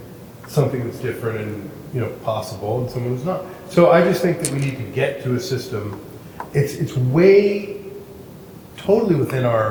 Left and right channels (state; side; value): identical; both; correlation 1.00